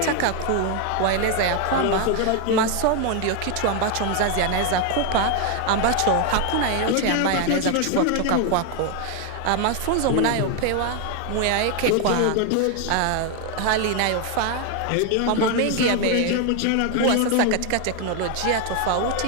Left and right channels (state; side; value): different; both; correlation 0.01